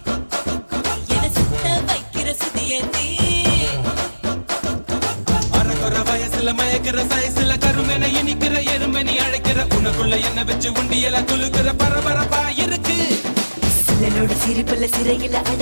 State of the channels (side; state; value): both; inverted; correlation -1.00